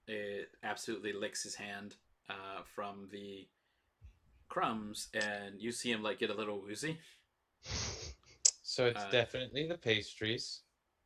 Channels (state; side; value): identical; both; correlation 1.00